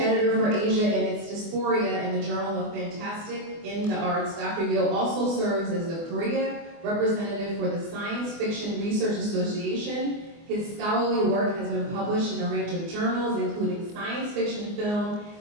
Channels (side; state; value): left; late; 24 ms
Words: for Asia and its Dysphoria in the Journal of Fantastic in the Arts, Dr. Yo also serves as the Korea representative for the Science Fiction Research Association. His scholarly work has been published in a range of journals, including Science Fiction, Film,